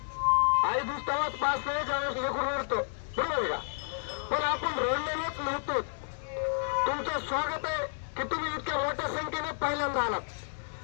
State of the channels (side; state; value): right; silent; digital silence